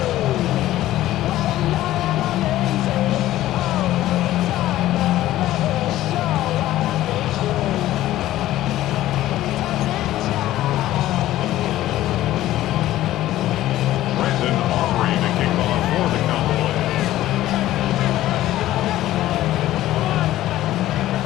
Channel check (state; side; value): quieter; right; 14.6 dB